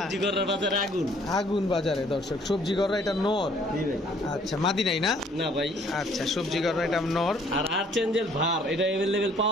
গররার বাজারে আগুন। আগুন বাজারে দর্শক, সবজি করা এটা নর। জি ভাই। আচ্ছা, মাদি নাই না? না ভাই। আচ্ছা, সবজি করা এটা নর। আর আর্চেঞ্জেল ভার, এটা অ্যাভেলেবেল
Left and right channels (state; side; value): normal; both; correlation 0.60